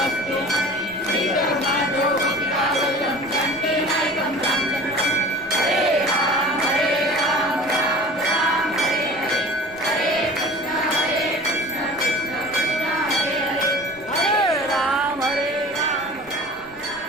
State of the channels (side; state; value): right; noise; rumble, 26 dB below the sound